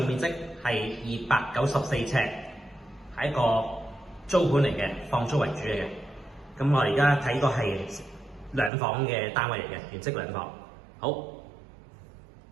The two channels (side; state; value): left; drops out; at 8.7 s